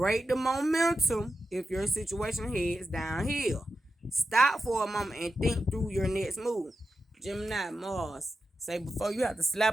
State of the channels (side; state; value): both; normal; correlation 0.90